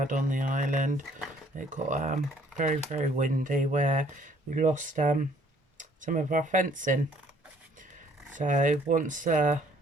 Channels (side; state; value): both; normal; correlation 0.61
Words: on the island. It got very, very windy where we lost some of our fencing. So once